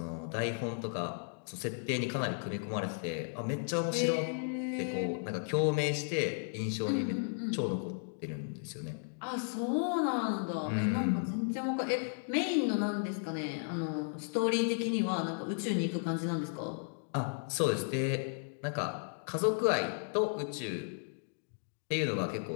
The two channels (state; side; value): silent; right; digital silence